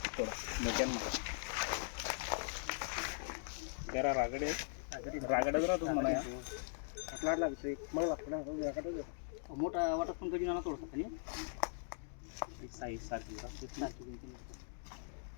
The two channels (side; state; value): right; silent; digital silence